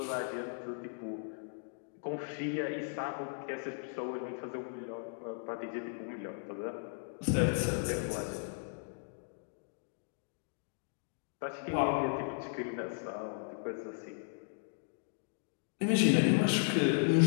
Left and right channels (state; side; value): silent; right; digital silence